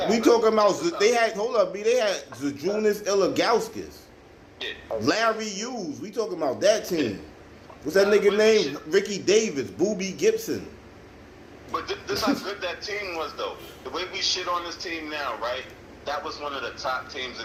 We talking about they had they had Zajunas Ilagauskas, Larry Hughes. We talking about that team. What's that nigga name? Ricky Davis, Boobie Gibson. But this how good that team was, though. The way we shit on this team now, right? That was one of the top teams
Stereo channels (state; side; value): identical; both; correlation 1.00